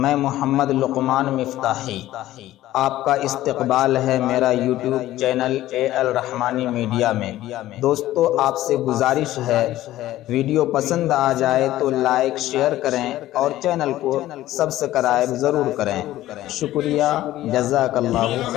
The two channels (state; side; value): quieter; right; 14.8 dB